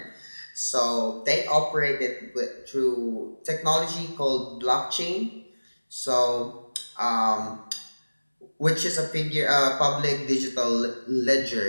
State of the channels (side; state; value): both; inverted; correlation -1.00